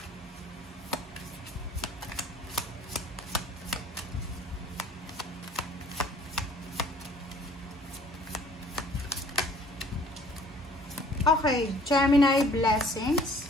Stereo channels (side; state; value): both; normal; correlation 0.55